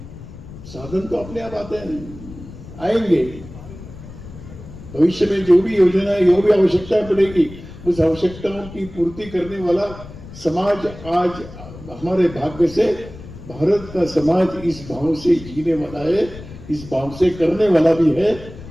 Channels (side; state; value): left; noise; rumble, 15 dB below the sound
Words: साधन तो अपने आप आते हैं, आएंगे। भविष्य में जो भी योजना है, जो भी आवश्यकता पड़ेगी, उस आवश्यकताओं की पूर्ति करने वाला समाज आज हमारे भाग्य से भारत का समाज इस भाव से जीने वाला है, इस भाव से करने वाला भी है।